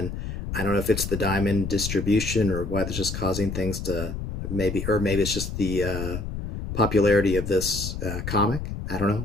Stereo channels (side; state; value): left; noise; rumble, 6 dB below the sound